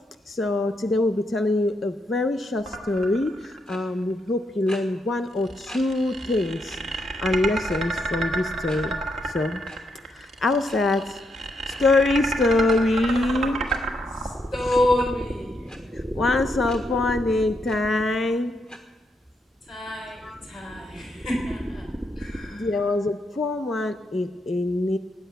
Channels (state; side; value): normal; both; correlation 0.79